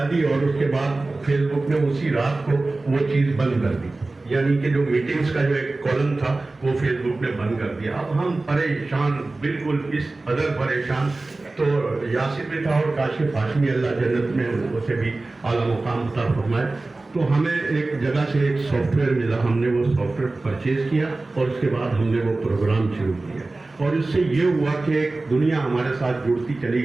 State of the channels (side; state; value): left; quieter; 3.2 dB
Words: دی، اور اس کے بعد فیس بک میں اسی رات کو وہ چیز بند کر دی، یعنی کہ جو میٹنگز کا جو ایک کالم تھا وہ فیس بک میں بند کر دیا۔ اب ہم پریشان، بالکل اس قدر پریشان، تو یاسر بھی تھا اور کاشف ہاشمی اللہ جنت میں اسے بھی اعلیٰ مقام عطا فرمائے، تو ہمیں ایک جگہ سے ایک سافٹ ویئر ملا، ہم نے وہ سافٹ ویئر پرچیز کیا، اور اس کے بعد ہم نے وہ پروگرام شروع کیا، اور اس سے یہ ہوا کہ ایک دنیا ہمارے ساتھ جڑتی چلی